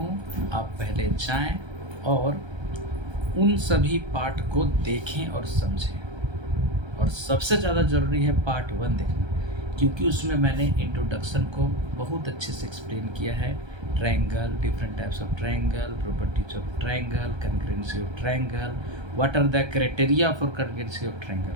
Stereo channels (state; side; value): late; left; 1.3 ms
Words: आप पहले जाएं और उन सभी पार्ट को देखें और समझें। और सबसे ज़्यादा ज़रूरी है पार्ट 1 देखना, क्योंकि उसमें मैंने इंट्रोडक्शन को बहुत अच्छे से एक्सप्लेन किया है। Triangle, different types of triangle, properties of triangle, congruency of triangle, what are the criteria for congruency of triangle.